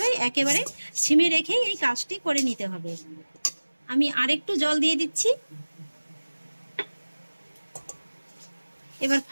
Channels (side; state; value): both; inverted; correlation -1.00